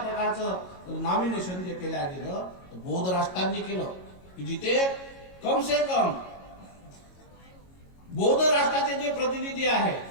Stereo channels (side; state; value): right; late; 22 ms